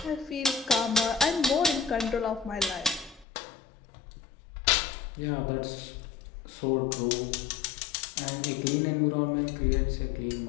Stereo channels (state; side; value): drops out; right; at 3.2 s